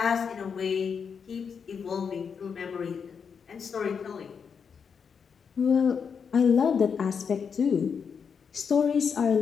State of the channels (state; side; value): quieter; right; 6.4 dB